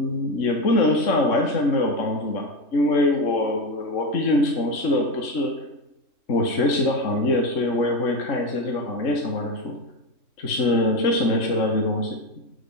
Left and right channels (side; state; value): right; late; 3.6 ms